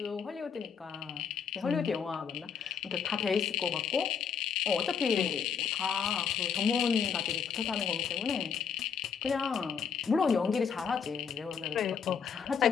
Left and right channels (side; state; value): right; quieter; 6.8 dB